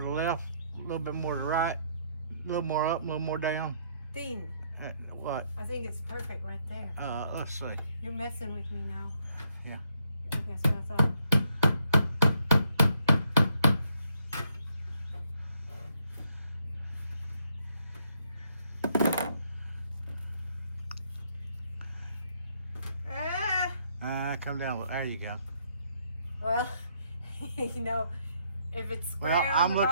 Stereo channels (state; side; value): inverted; both; correlation -0.72